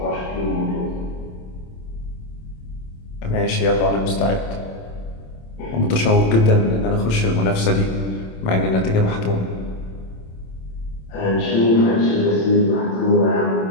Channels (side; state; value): right; late; 27 ms